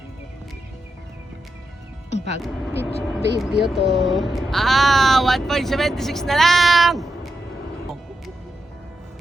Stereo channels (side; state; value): both; normal; correlation 0.86